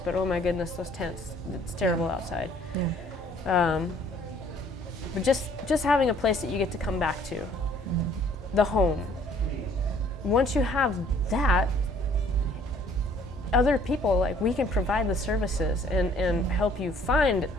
but oh my goodness, those tents, it's terrible outside. But just having a place that you get to come back to, the home. Once you have that, other people, like, we can provide the services and help you find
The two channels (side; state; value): both; normal; correlation 0.58